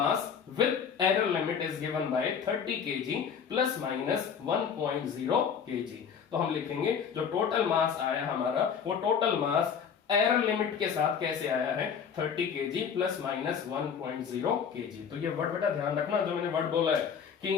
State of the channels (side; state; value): right; quieter; 7.1 dB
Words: by 30 kg plus minus 1.0 kg। तो हम लिखेंगे जो टोटल मास आया हमारा, वो टोटल मास एरर लिमिट के साथ कैसे आया है, 30 kg प्लस माइनस 1.0 kg। तो ये वर्ड बेटा ध्यान रखना, जो मैंने वर्ड बोला है कि